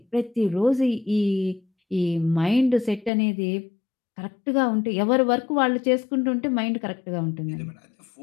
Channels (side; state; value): right; drops out; at 3.1 s